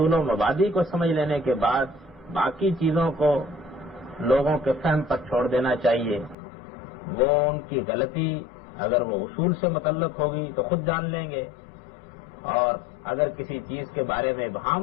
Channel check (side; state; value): right; drops out; at 6.4 s